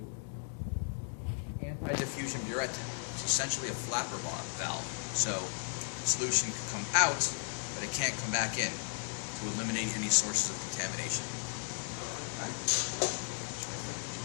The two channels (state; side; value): silent; right; 54 dB below the other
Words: anti-diffusion burette. It's essentially a flapper valve. So the solution can come out, but it can't come back in to eliminate any sources of contamination. Okay.